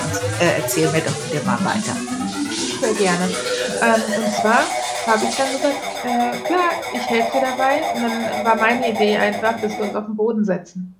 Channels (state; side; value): identical; both; correlation 1.00